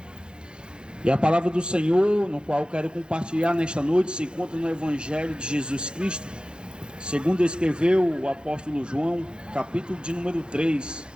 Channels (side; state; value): left; late; 0.050 ms